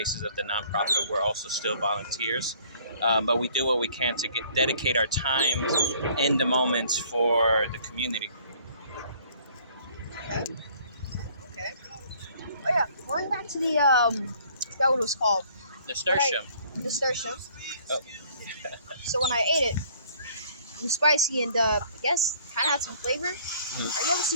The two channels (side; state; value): both; inverted; correlation -0.57